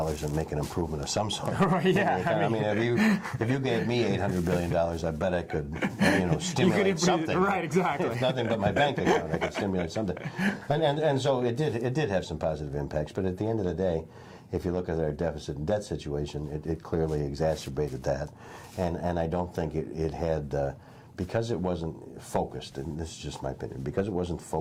make an improvement of some sort? Right, yeah. I mean, if you gave me $800 billion, I bet I could stimulate something. Right, exactly. If nothing but my bank account, I could stimulate something. And so it did have some positive impacts. But at the end of the day, if you look at our deficit and debt situation, it clearly exacerbated that. And I don't think it had, because it wasn't focused, and this is just my opinion, because it wasn't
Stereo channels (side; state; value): both; identical; correlation 1.00